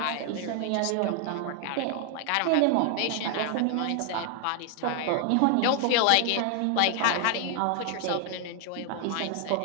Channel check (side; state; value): both; different; correlation 0.00